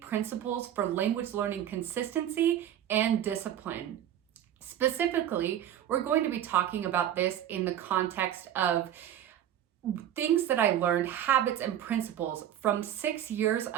for language learning consistency and discipline. Specifically, we're going to be talking about this in the context of things that I learned, habits and principles from 6 years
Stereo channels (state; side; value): quieter; left; 10.9 dB